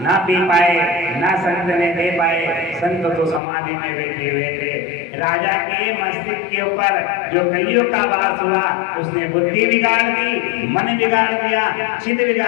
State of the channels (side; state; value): right; drops out; at 3.4 s